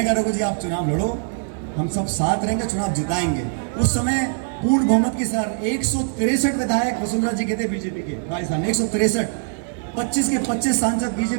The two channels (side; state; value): left; silent; 64 dB below the other